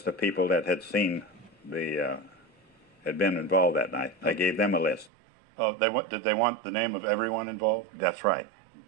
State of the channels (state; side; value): drops out; left; at 5.1 s